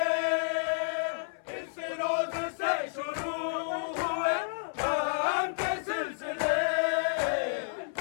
इस रोज से शुरू हुए गम के सिलसिले,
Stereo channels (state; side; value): silent; right; 57 dB below the other